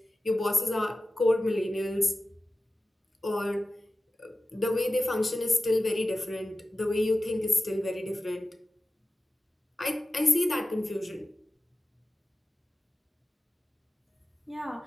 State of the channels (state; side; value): normal; both; correlation 0.95